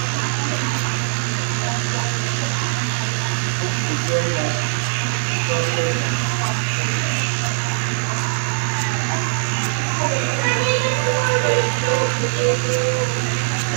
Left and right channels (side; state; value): left; silent; 65 dB below the other